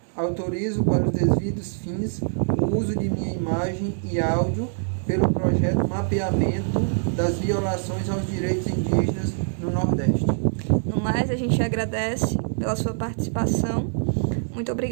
autorizo para os devidos fins o uso de minha imagem e áudio pelo projeto Mapeamento das Violações aos Direitos Indígenas no Nordeste. No mais, a gente agradece pela sua participação. Muito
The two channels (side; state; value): left; silent; digital silence